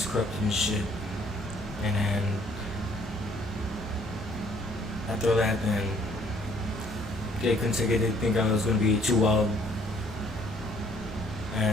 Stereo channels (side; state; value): both; normal; correlation 0.62